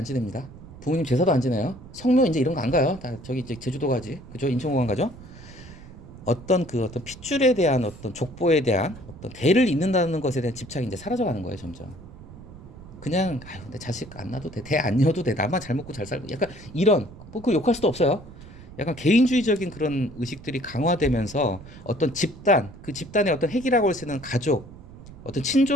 지냅니다. 부모님 제사도 안 지내요. 성묘 이제 이런 거 안 가요. 다 저기 이제 제주도 가지. 그죠? 인천공항 가죠. 어떤 핏줄에 대한 어떤 족보에 대한 어떤 대를 잇는다는 것에 대한 집착이 이제 사라져가는 거예요, 점점. 그냥 내 자식 안 낳아도 돼, 대 안 이어도 돼, 나만 잘 먹고 잘 살고, 약간 이런 그 욕할 수도 없어요. 약간 개인주의적인 그런 의식들이 강화되면서 어떤 집단, 그 집단의 어떤 핵이라고 할 수 있는 가족, 어떤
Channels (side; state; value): right; noise; rumble, 17 dB below the sound